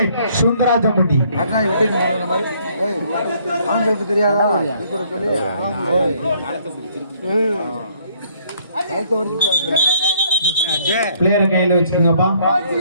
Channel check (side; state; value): both; inverted; correlation -0.65